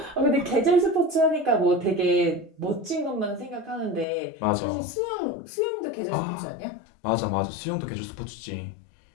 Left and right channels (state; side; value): drops out; right; at 4.0 s